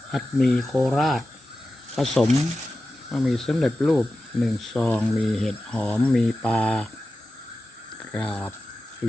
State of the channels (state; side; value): normal; both; correlation 0.93